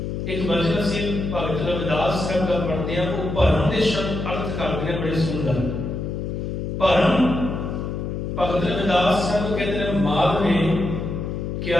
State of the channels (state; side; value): noise; left; hum, 4 dB below the sound